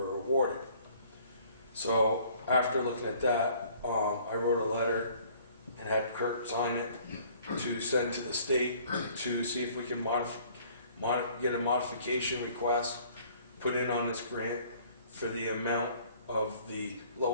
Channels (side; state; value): both; inverted; correlation -0.56